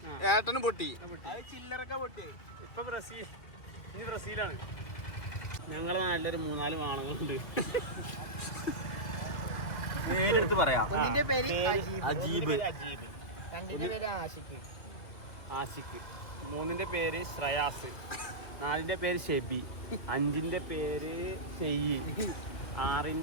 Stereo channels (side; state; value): right; late; 2.6 ms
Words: ഏട്ടനും പൊട്ടി അത് ചില്ലറൊക്കെ പൊട്ടിയത് ഇപ്പൊ ഇനി ബ്രസീലാണ്. ഞങ്ങളെ നല്ലൊരു 4 വാണങ്ങളുണ്ട്. ഒന്നിന്റെ പേര് അജീബ്, രണ്ടിന്റെ പേര് ആഷിഖ്, 3ന്റെ പേര് ശ്രയാസ്, 4ന്റെ പേര് ഷെബി, 5ന്റെ പേര് ഷെയ്യ്,